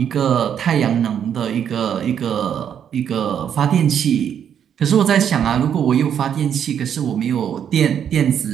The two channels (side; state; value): left; quieter; 8.7 dB